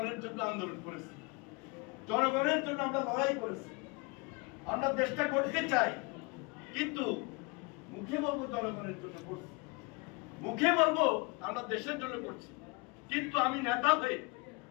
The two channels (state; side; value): quieter; right; 28.3 dB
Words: জন্য আন্দোলন করেছি, জনগণের জন্য আমরা লড়াই করেছি, আমরা দেশটা করতে চাই, কিন্তু মুখে বলবো জনগণের জন্য করছি, মুখে বলবো আমরা দেশের জন্য করছি, কিন্তু আমি নেতা হয়ে,